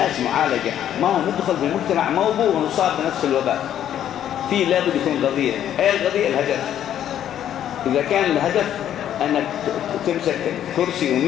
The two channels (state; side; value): quieter; right; 10.7 dB